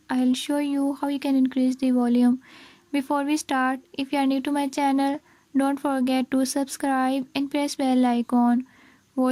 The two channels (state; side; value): identical; both; correlation 1.00